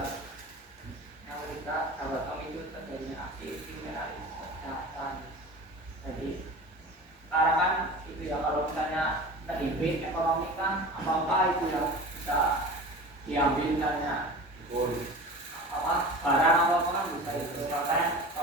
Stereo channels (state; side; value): normal; both; correlation 0.35